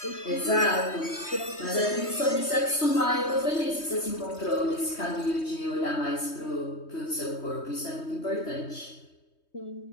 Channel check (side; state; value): right; late; 3.2 ms